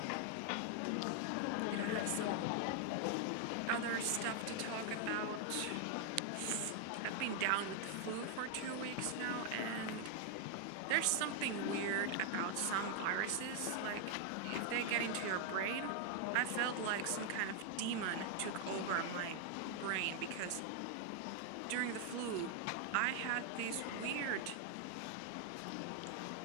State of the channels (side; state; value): both; different; correlation 0.00